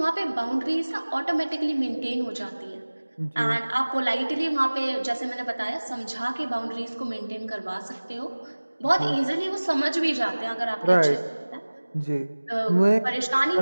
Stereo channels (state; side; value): inverted; both; correlation -1.00